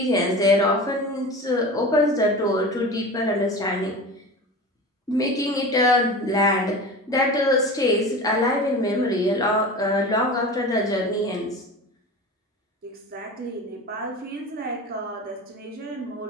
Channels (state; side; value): normal; both; correlation 0.32